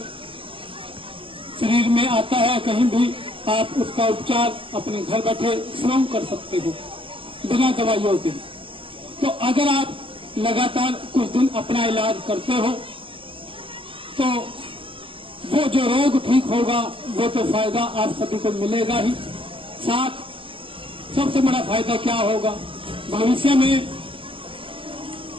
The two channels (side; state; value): left; late; 0.25 ms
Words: शरीर में आता है कहीं भी, आप उसका उपचार अपने घर बैठे स्वयं कर सकते हो बिना दवाइयों के। तो अगर आप लगातार कुछ दिन अपना इलाज करते हो तो वो जो रोग ठीक होगा वो तो फायदा आप सभी को मिलेगा ही। साथ सबसे बड़ा फायदा क्या होगा, भविष्य में